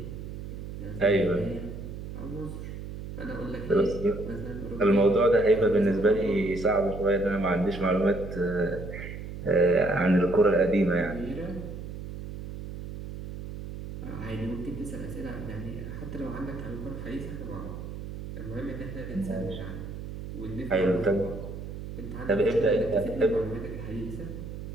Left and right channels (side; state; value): right; noise; hum, 9 dB below the sound